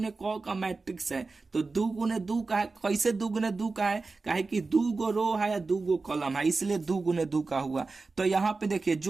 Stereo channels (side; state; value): left; quieter; 3.9 dB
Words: क का मैट्रिक्स है, तो 2 गुने 2 का है। कैसे 2 गुने 2 का है? काहे कि 2 गो रो है या 2 गो कॉलम है, इसलिए 2 गुने 2 का हुआ। तो यहाँ पे देखिए